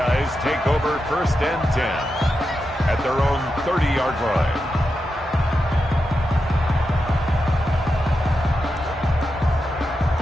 take over 1st and 10 at their own 30-yard line.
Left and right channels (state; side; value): normal; both; correlation 0.88